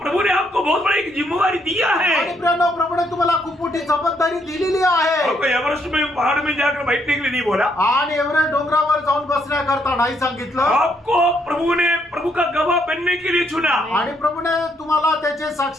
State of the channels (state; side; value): normal; both; correlation 0.73